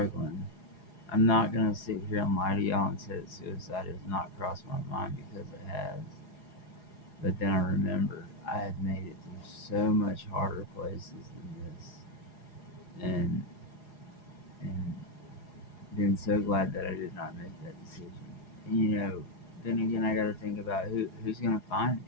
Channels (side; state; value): right; late; 4.8 ms